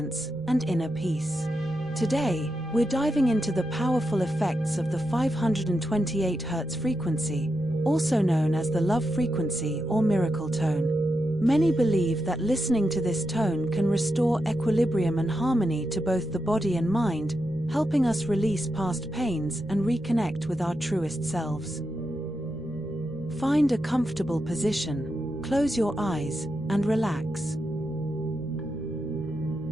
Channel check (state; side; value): normal; both; correlation 0.86